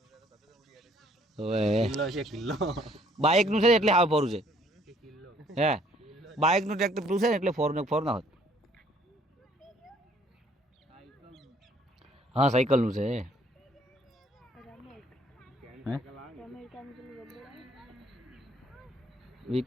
હવે કિલ્લો છે કિલ્લો. બાઇક નું છે ને એટલે હાવ ફોરું છે હે બાઇક નું ટ્રેક્ટર પેલું છે ને એટલે ફોર ના હોત હા સાયકલ નું છે હે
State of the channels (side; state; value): both; normal; correlation 0.62